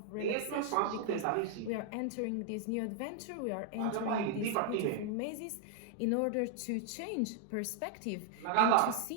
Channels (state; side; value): different; both; correlation 0.00